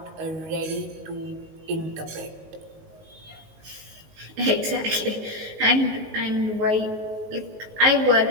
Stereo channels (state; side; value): late; left; 19 ms